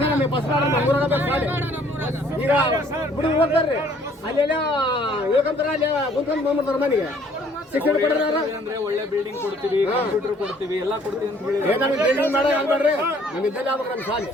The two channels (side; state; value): both; normal; correlation 0.60